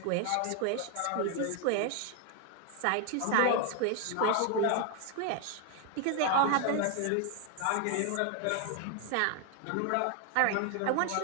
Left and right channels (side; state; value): both; different; correlation 0.00